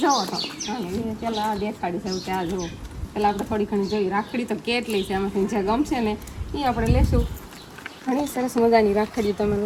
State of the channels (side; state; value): both; identical; correlation 1.00